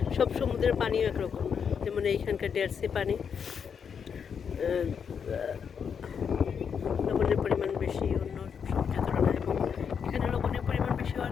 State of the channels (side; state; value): right; quieter; 6.9 dB